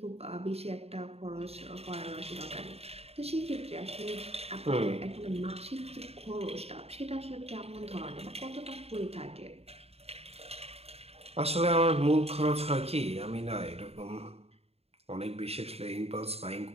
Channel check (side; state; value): left; late; 0.29 ms